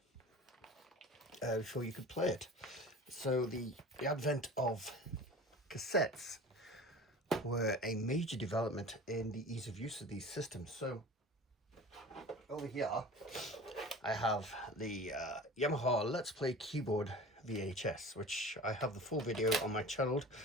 before you could play it. So the advent of cassettes were a major development in the ease of use of these systems. So over here I have the Yamaha Let's Play Keyboard VHS, which I have the full video on my channel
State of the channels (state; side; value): normal; both; correlation 0.38